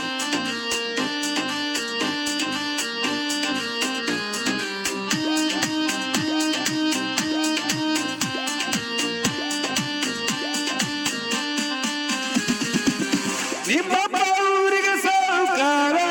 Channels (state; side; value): identical; both; correlation 1.00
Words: ನಿಮ್ಮಪ್ಪ ಊರಿಗೆ ಸಾಹುಕಾರ